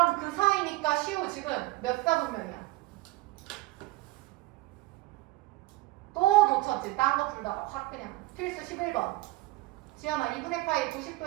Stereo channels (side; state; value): left; quieter; 19.4 dB